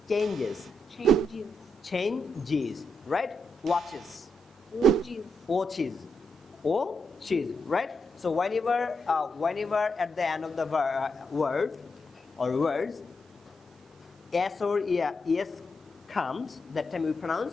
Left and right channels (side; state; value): both; normal; correlation 0.83